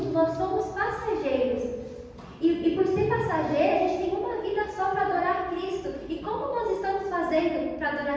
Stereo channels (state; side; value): identical; both; correlation 1.00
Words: nós somos passageiros. E por ser passageiro, a gente tem uma vida só para adorar Cristo. E como nós estamos fazendo para